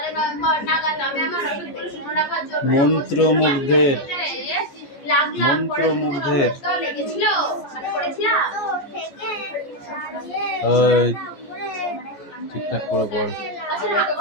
নভেম্বর নাগাদ আমি আমার রসদগুলো শুকনো রাখার জন্য মন্ত্রমুগ্ধের লেগেছিল মানে করেছিলাম। ঠিকঠাক করে পড়।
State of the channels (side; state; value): right; late; 14 ms